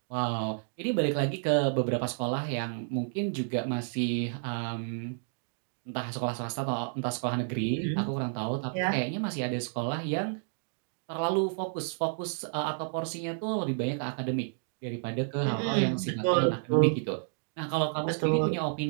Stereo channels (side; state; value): left; silent; digital silence